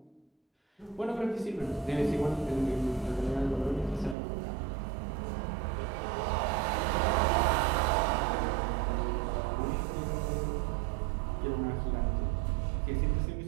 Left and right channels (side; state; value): left; drops out; at 4.2 s